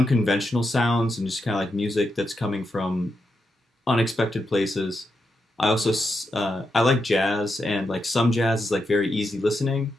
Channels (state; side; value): normal; both; correlation 0.85